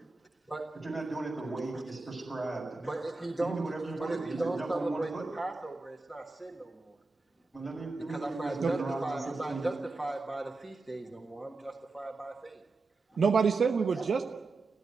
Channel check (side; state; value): left; quieter; 3.7 dB